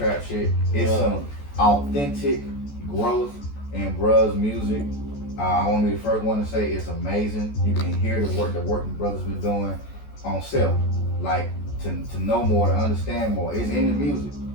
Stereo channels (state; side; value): late; right; 14 ms